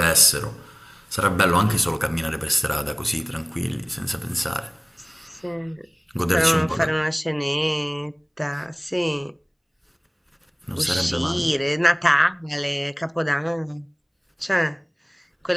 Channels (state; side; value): identical; both; correlation 1.00